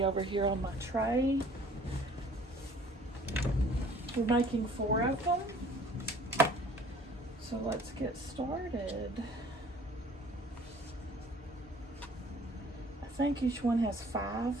over here on my tray. We're making 4 of them. So let's get started. I think each one has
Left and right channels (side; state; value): both; normal; correlation 0.53